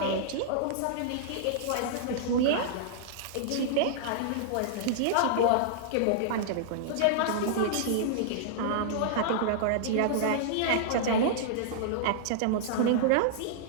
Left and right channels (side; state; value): both; different; correlation -0.02